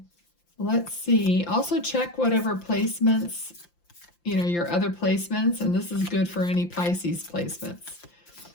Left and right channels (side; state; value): right; late; 5.8 ms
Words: let's see. Also check whatever placements, your other placements, and this is good for any Pisces placements.